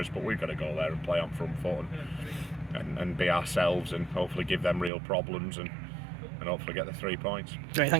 but we've got to go there and play on front foot and be ourselves, and hopefully give them real problems, and hopefully get the 3 points. Great,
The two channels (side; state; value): left; drops out; at 4.9 s